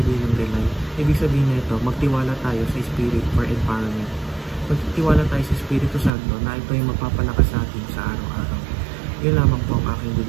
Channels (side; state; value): left; drops out; at 6.1 s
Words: ng rely? Ibig sabihin na ito, magtiwala tayo sa Spirit for empowerment. Magtiwala tayo sa Espiritu Santo na ito yung magpapalakas sa atin sa araw-araw. Yun lamang po ang aking